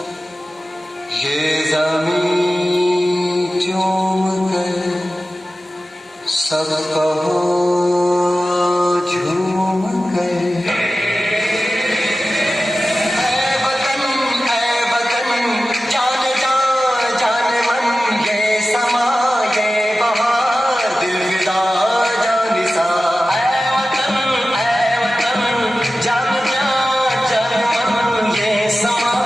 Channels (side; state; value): both; normal; correlation 0.95